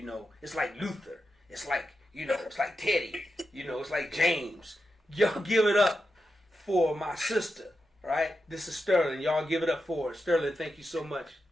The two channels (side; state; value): both; normal; correlation 0.88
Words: like Luther. It's like it's like Teddy. It's like James. Y'all give it up for my sister. Right? This is Sterlyn. Y'all give it up for her. Sterlyn, thank you so much.